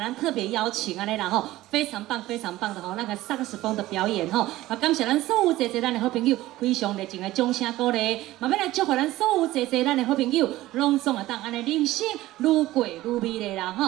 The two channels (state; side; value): quieter; left; 16.6 dB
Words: 特别邀请啊，来然后非常棒的吼，那个上课时风的表演吼，啊，感谢咱所有坐咱的好朋友，非常热情的掌声鼓励，嘛要来祝福咱所有坐咱的好朋友，拢总会当安尼人生愈过愈美丽啦